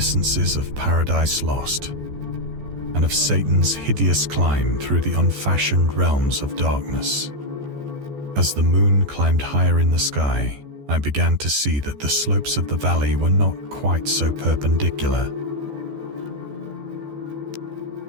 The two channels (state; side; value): late; left; 14 ms